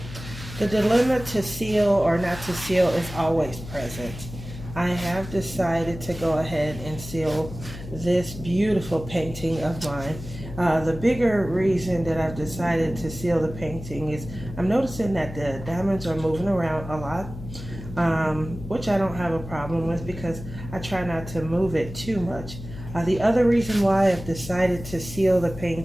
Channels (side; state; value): left; noise; hum, 12 dB below the sound